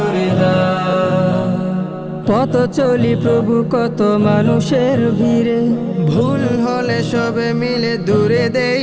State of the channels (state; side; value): identical; both; correlation 1.00